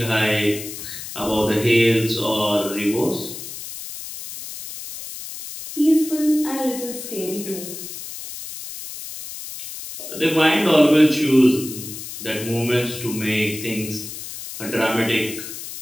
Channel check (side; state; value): left; noise; hiss, 10 dB below the sound